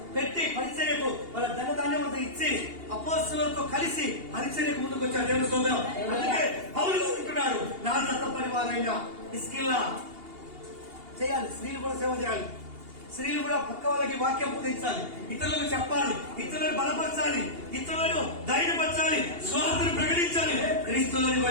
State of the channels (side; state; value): left; late; 2.8 ms